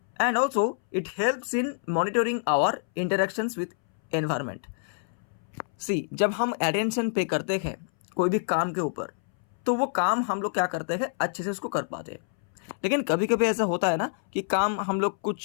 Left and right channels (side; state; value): right; silent; 60 dB below the other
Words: And also it helps in monitoring our interactions with environment. See, जब हम attention पे करते हैं कोई भी काम के ऊपर, तो वो काम हम लोग क्या करते हैं, अच्छे से उसको कर पाते हैं। लेकिन कभी कभी ऐसा होता है ना कि काम हम लोग